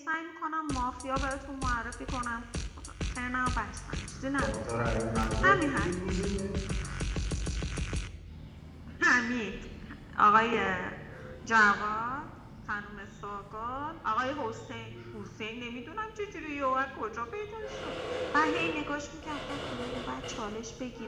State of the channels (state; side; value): identical; both; correlation 1.00